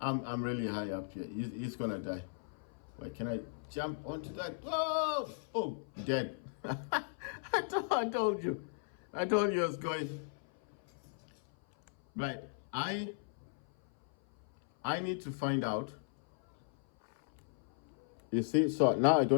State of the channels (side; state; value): right; silent; 53 dB below the other